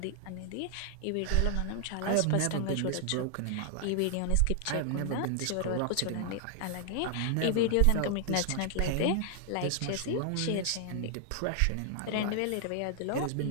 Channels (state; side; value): different; both; correlation 0.00